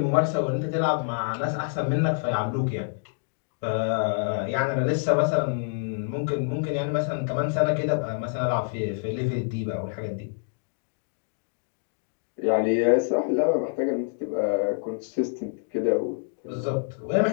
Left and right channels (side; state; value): right; silent; digital silence